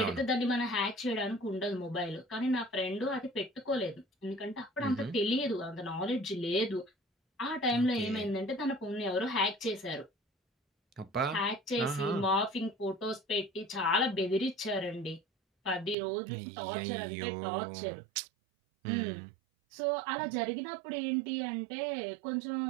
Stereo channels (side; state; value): left; drops out; at 16.0 s